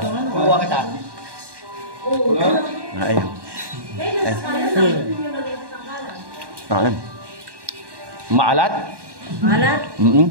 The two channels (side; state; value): left; late; 1.1 ms